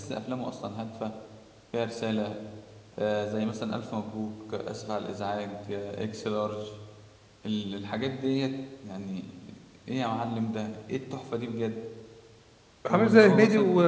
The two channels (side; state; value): both; identical; correlation 1.00